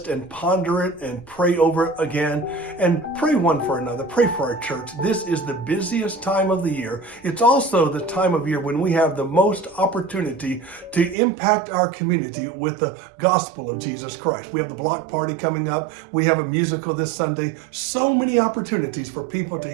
and ponder it and pray over it again and pray one for another. Pray for our church. This is the busiest time of the year. It's also the time of year when we have the most opportunity to impact our community with the gospel of Jesus Christ. We have the block party coming up. We have a musical this Sunday. So many opportunities for people to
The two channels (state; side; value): drops out; left; at 11.2 s